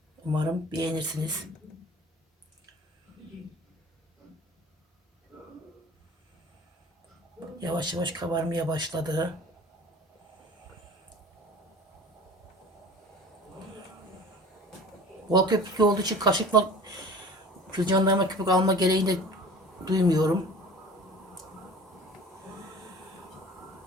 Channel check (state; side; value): normal; both; correlation 0.41